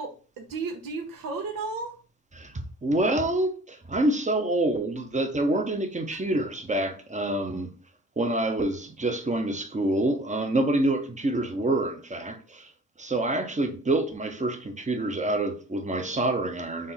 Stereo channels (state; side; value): normal; both; correlation 0.48